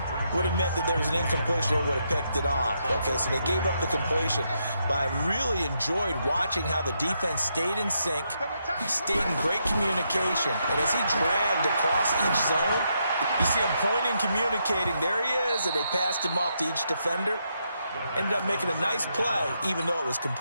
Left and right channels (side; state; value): both; inverted; correlation -0.80